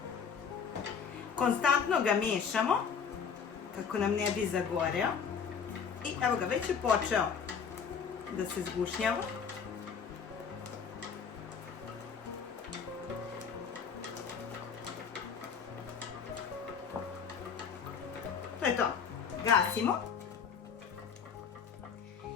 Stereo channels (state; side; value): quieter; right; 6.6 dB